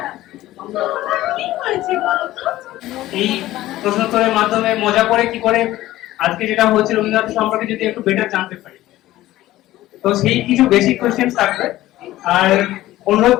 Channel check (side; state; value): right; quieter; 15.7 dB